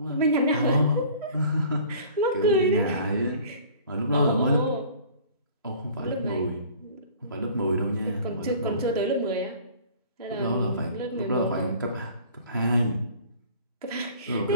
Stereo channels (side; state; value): both; inverted; correlation -0.48